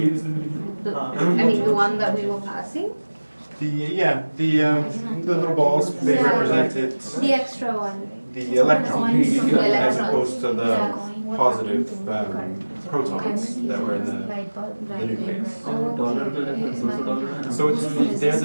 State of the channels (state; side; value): inverted; both; correlation -1.00